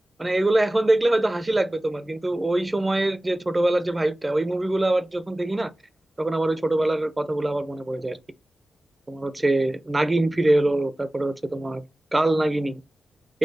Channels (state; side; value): normal; both; correlation 0.98